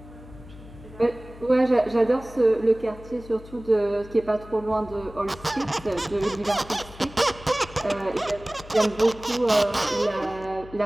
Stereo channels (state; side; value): noise; left; hum, 18 dB below the sound